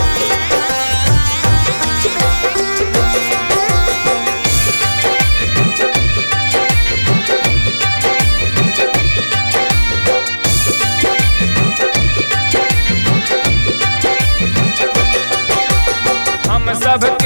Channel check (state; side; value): inverted; both; correlation -1.00